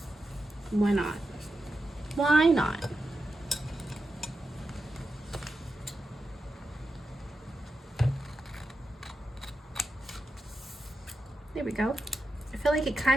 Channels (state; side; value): normal; both; correlation 0.89